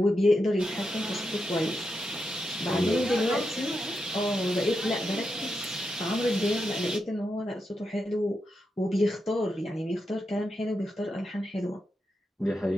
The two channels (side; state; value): both; normal; correlation 0.86